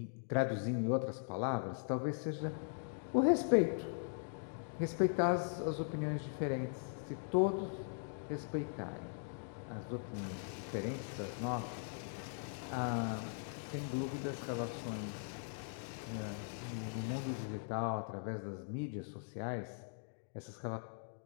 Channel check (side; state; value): right; silent; digital silence